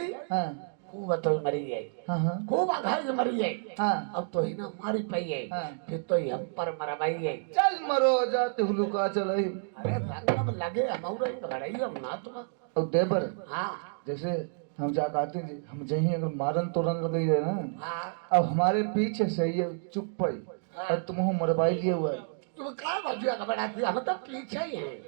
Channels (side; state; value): left; silent; digital silence